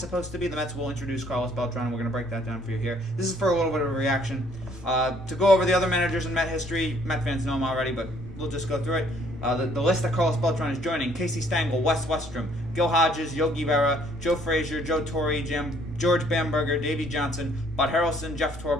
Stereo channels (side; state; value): both; normal; correlation 0.63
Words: supposed to be. The Mets will introduce Carlos Beltran, and we're going to break that down for you here. This is for a little bit of a reaction. To go over the other managers in Met history, Met fans know them already, but we'll just go through it. The list that Carlos Beltran is joining: Casey Stengel, Wes Westrom, Gil Hodges, Yogi Berra, Joe Frazier, Joe Torre, George Bamberger, Davey Johnson, Bud Harrelson, Jeff